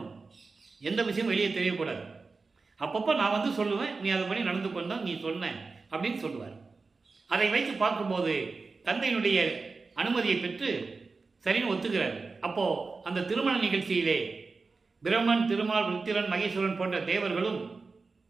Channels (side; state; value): left; quieter; 4.2 dB